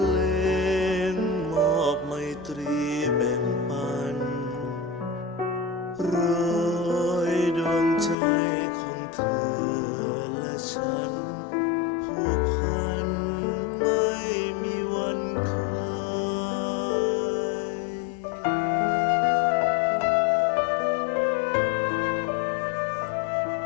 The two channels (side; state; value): right; drops out; at 8.2 s